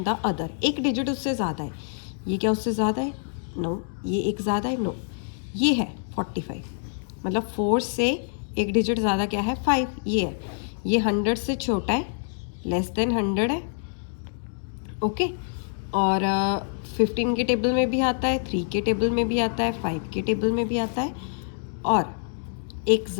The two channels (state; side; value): silent; right; digital silence